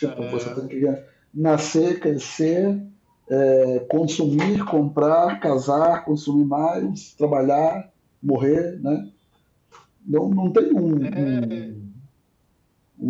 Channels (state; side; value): identical; both; correlation 1.00